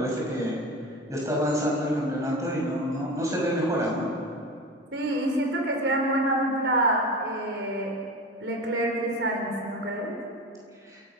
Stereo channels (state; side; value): normal; both; correlation 0.30